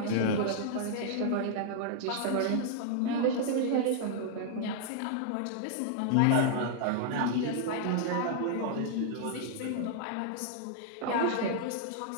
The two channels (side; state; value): both; different; correlation -0.01